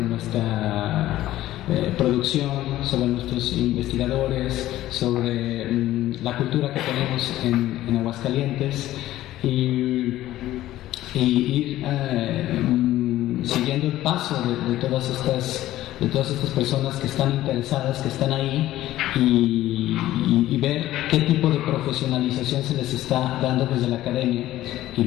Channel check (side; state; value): right; quieter; 14.7 dB